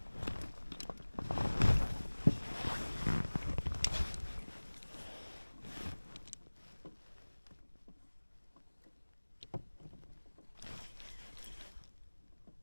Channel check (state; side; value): inverted; both; correlation -1.00